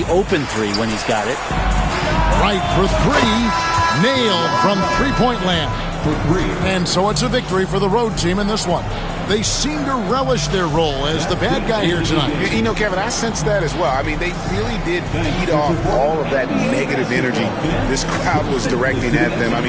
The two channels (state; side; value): identical; both; correlation 1.00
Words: open three when he's got it. Right for three. Nailed from three-point land. And so it's a victory for the road team in this one. They seem to relish their role as the bad guy here tonight. You know, Kevin, I sense that as well. I mean, they really did feed off all of that negative energy this crowd was directing at them. I